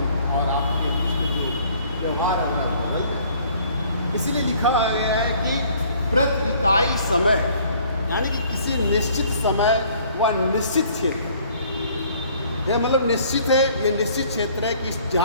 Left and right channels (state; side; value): inverted; both; correlation -0.57